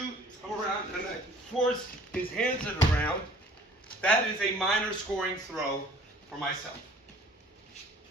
come around and I force his hands to the ground, that is a minor scoring throw for myself.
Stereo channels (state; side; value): normal; both; correlation 0.52